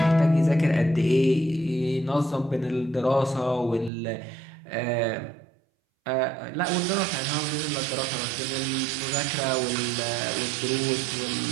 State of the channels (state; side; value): drops out; left; at 3.9 s